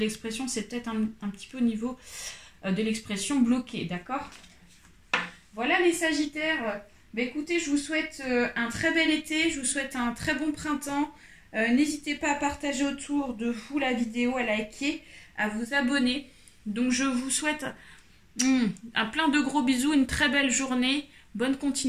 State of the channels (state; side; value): identical; both; correlation 1.00